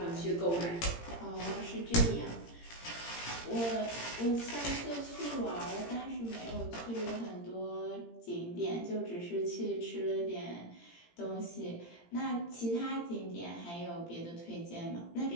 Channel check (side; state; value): right; late; 17 ms